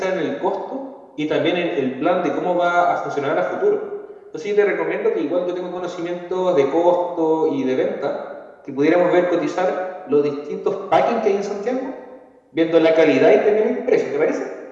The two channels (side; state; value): both; identical; correlation 1.00